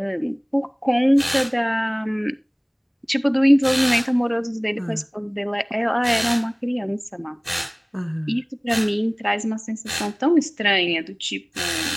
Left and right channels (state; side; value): identical; both; correlation 1.00